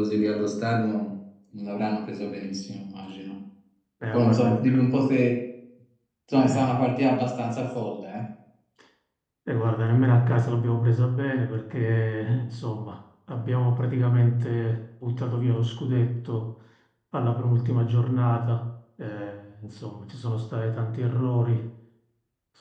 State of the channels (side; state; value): both; identical; correlation 1.00